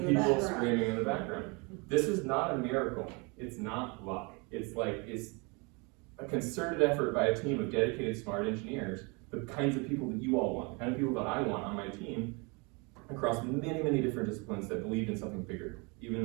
the background. The people screaming in the background. This is not a miracle. It's not luck. It's a concerted effort by a team of dedicated, smart engineers, the kinds of people that you all want, the kind of people that I want on my team, across many different disciplines that believed in something bigger, even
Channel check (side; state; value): left; quieter; 30.2 dB